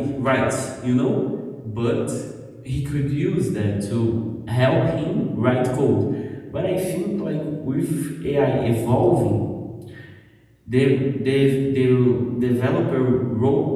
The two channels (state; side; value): identical; both; correlation 1.00